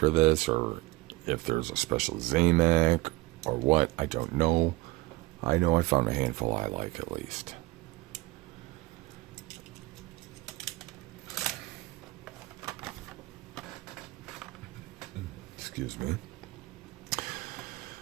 this, or if there's a special Zamac or what. I don't know. I know I found a handful I like at least. Excuse me.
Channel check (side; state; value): left; quieter; 21.4 dB